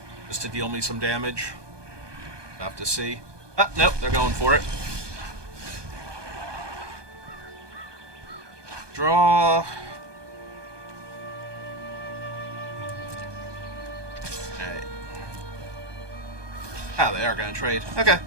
just to deal me some damage. Have to see. Ah, nope, they're going for it. Draw. Alright. Ah, they are going to trade. Okay.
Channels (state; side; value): late; left; 1.2 ms